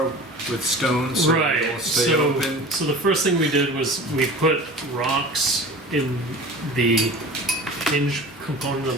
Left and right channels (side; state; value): both; normal; correlation 0.39